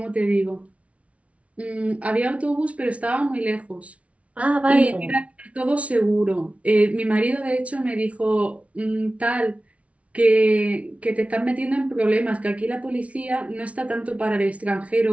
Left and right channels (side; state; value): left; late; 0.064 ms